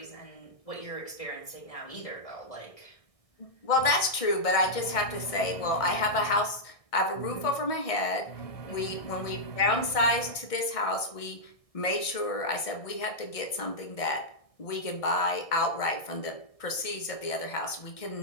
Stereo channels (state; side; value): late; right; 1.6 ms